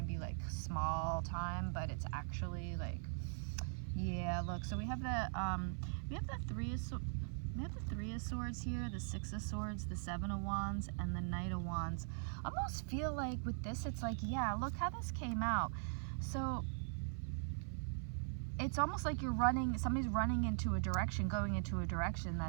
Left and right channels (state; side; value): silent; left; 50 dB below the other